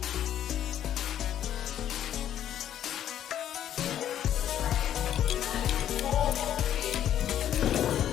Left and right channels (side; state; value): right; quieter; 10.7 dB